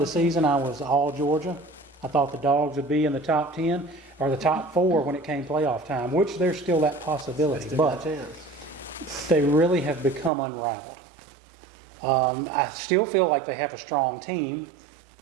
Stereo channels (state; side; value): drops out; left; at 10.3 s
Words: season, I was all Georgia. I thought the Dogs would be in the top 10 or the top 4 when it came playoff time, which there's still that possibility. But they really have become unrivaled. I still feel like they have a strong team,